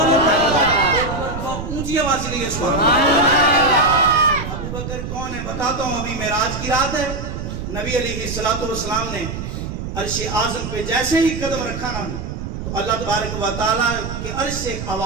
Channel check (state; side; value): noise; right; rumble, 6 dB below the sound